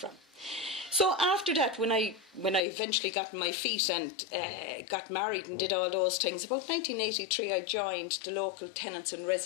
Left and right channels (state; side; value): drops out; right; at 2.6 s